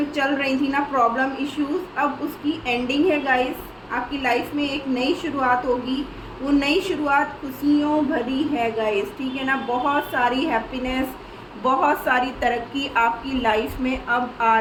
चल रही थी ना प्रॉब्लम इश्यूज, अब उसकी एंडिंग है गाइस। आपकी लाइफ में एक नई शुरुआत होगी, वो नई शुरुआत खुशियों भरी है गाइस, ठीक है ना। बहुत सारी हैप्पीनेस, बहुत सारी तरक्की आपकी लाइफ में अब आ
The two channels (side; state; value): both; identical; correlation 1.00